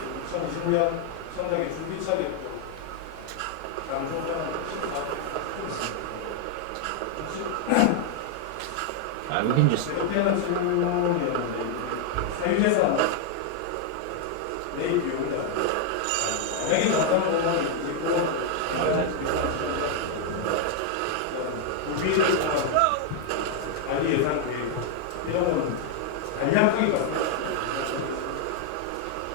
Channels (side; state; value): both; different; correlation 0.00